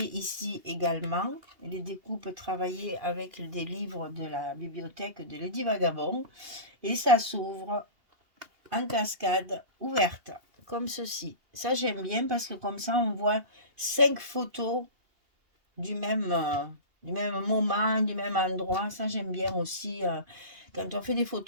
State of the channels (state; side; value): late; left; 2.8 ms